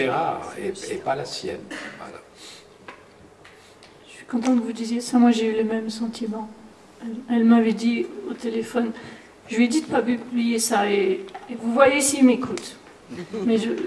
et pas la sienne. Voilà. Je suis contente que vous disiez ça. Moi, j'ai eu le même sentiment. Elle m'avait dit au téléphone, je lui ai dit de ne pas publier ça, et vous voyez s'il m'écoute. Mais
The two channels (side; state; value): both; identical; correlation 1.00